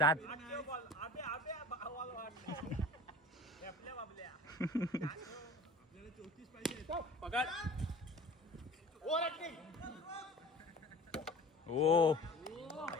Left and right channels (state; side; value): normal; both; correlation 0.42